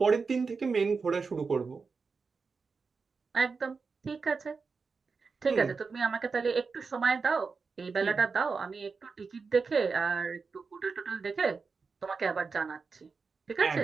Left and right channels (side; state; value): left; quieter; 4.8 dB